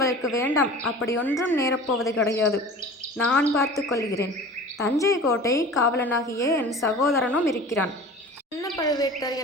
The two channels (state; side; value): normal; both; correlation 0.40